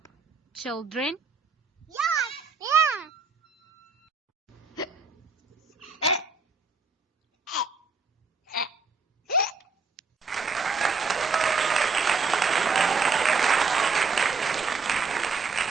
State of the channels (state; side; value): quieter; left; 4.5 dB